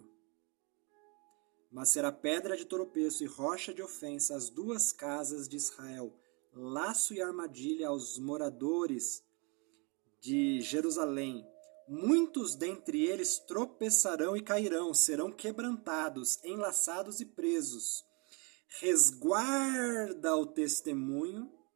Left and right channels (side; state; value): left; quieter; 31.9 dB